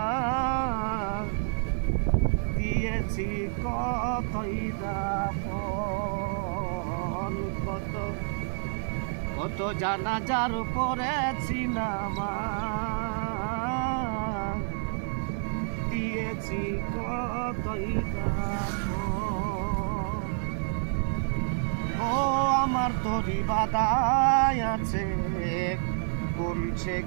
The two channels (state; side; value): silent; left; digital silence